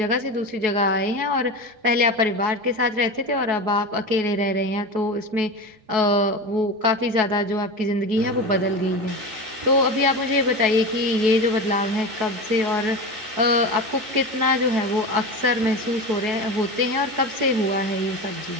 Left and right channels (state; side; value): late; left; 4.7 ms